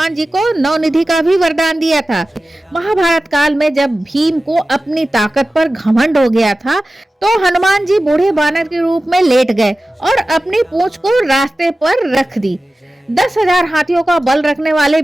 जी को नवनिधि का भी वरदान दिया था। महाभारत काल में जब भीम को अपनी ताकत पर घमंड हो गया था तो हनुमान जी बूढ़े बानर के रूप में लेट गए और अपनी पूंछ को रास्ते पर रख दी। 10,000 हाथियों का बल रखने वाले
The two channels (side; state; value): both; normal; correlation 0.95